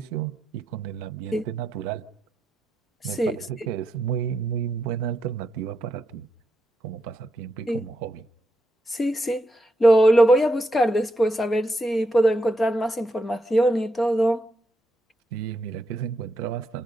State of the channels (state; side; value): normal; both; correlation 0.82